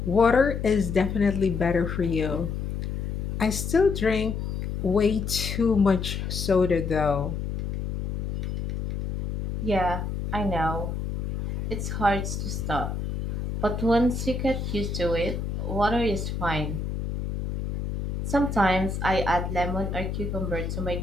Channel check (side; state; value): left; noise; hum, 4 dB below the sound